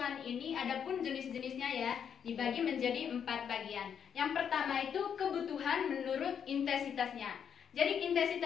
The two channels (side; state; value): right; quieter; 7.9 dB